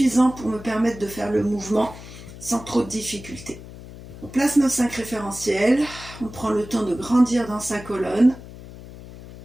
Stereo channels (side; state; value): left; noise; hum, 15 dB below the sound